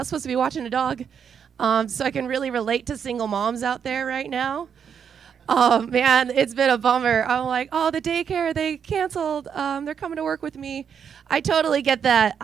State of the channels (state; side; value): quieter; left; 7.5 dB